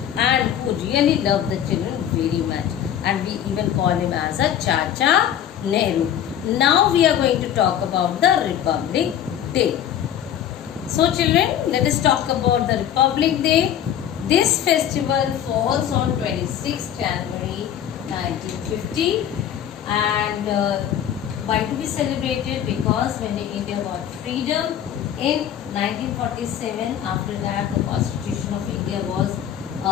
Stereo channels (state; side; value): quieter; right; 10.1 dB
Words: and who really loved the children very much. And we even call him as a Chacha Nehru. Now we are going to talk about the Republic Day. So children, let us talk about the Republic Day. This festival falls on 26th January 1950, and why to be celebrated? Because when India got freedom in 1947, after that the Constitution of India was